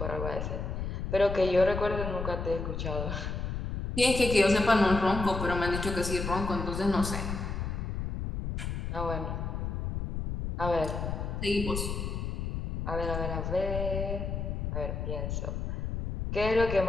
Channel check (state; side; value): noise; left; rumble, 3 dB below the sound